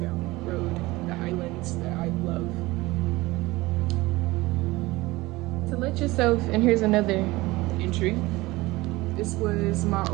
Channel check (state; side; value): quieter; left; 20.4 dB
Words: Road, the Highlands that I love. To let yourself, and here's another entry. This was my